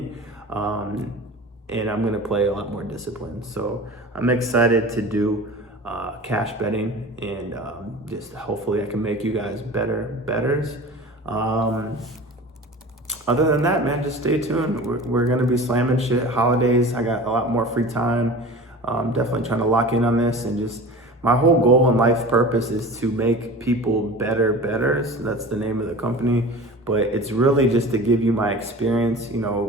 And I'm gonna play a lot more disciplined. So I'm excited to do cash betting, and just hopefully I can make you guys better bettors. Other than that, man, just stay tuned. We're gonna be slamming shit. Holidays, I got a lot more free time. Definitely trying to lock in on this, and just my whole goal in life purpose is to make people better bettors. That's the name of the company. But it's really just to give you my experience, a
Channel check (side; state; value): both; normal; correlation 0.37